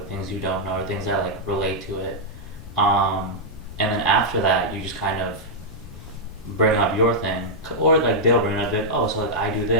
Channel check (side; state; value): left; noise; rumble, 15 dB below the sound